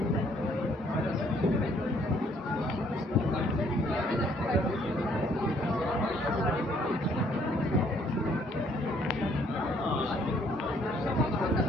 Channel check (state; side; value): normal; both; correlation 0.64